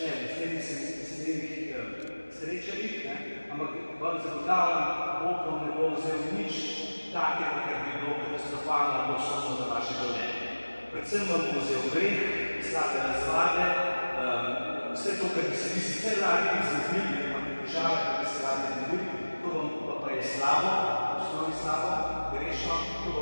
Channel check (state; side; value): inverted; both; correlation -1.00